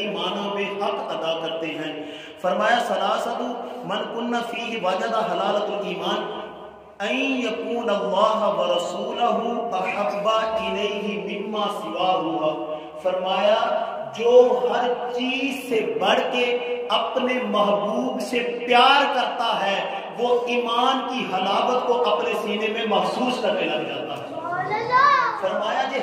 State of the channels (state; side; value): identical; both; correlation 1.00